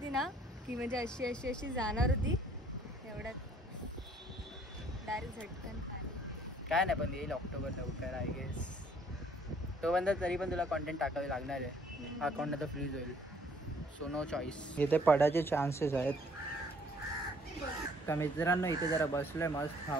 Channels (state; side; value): normal; both; correlation 0.60